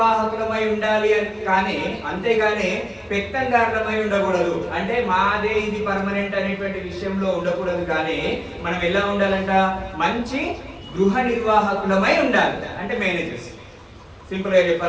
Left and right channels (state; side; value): identical; both; correlation 1.00